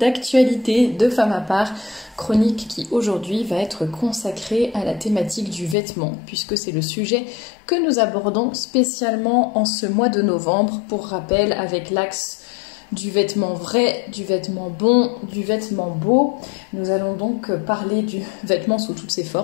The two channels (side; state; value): right; drops out; at 5.8 s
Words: de Femme à part. Chronique qui aujourd'hui va être consacrée à la thématique du vêtement, puisque c'est le sujet que nous abordons spécialement en ce mois de novembre. Pour rappel, avec l'axe du vêtement vrai, du vêtement bon, du vêtement beau. Nous allons donc parler du vêtement sous toutes ses